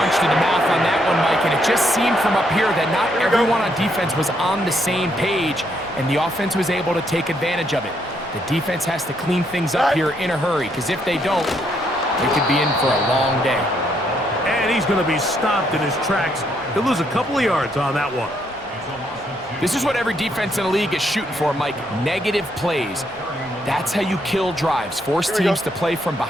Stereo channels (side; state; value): both; normal; correlation 0.74